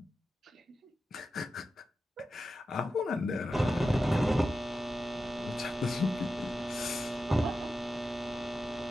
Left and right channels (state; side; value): normal; both; correlation 0.91